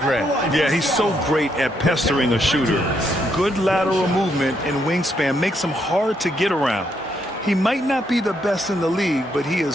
Grant. Yeah, he's so great at pestering a shooter. Good lateral movement and wingspan makes him hard to get around. He might not be the best in the league, but he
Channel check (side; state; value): both; normal; correlation 0.76